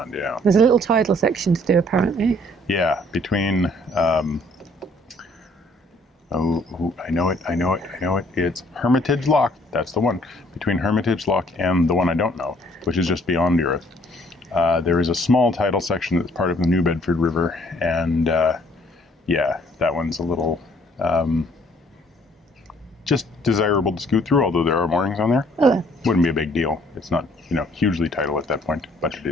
yeah. There's a little tidal section to do, apparently. Yeah, between, I know it. It's Hermitage Lock. That's the one. Between Hermitage Lock and the one I don't know, which is just beyond Earith. There is a small tidal section that's part of the New Bedford River, and yeah, that one's a little just desirable to scoot through, although there are moorings on there. Oh. Wouldn't be a big deal. It's not, hugely tidal at that point, but it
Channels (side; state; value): both; normal; correlation 0.61